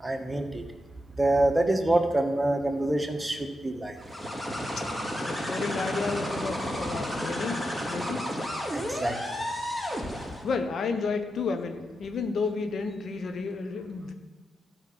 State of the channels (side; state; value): both; normal; correlation 0.87